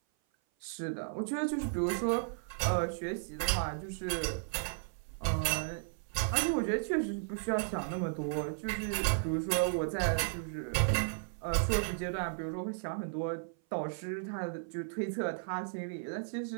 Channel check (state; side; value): silent; left; 55 dB below the other